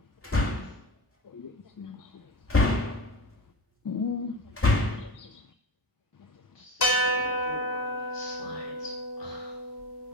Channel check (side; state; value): both; normal; correlation 0.26